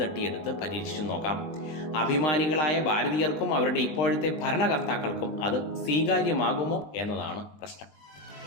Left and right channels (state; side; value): late; right; 20 ms